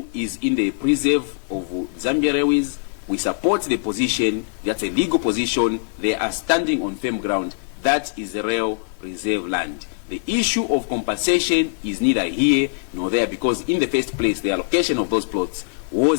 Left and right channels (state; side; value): silent; right; digital silence